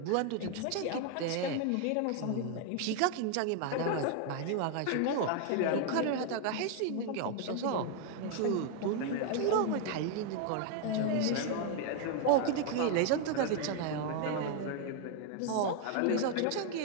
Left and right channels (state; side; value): different; both; correlation 0.01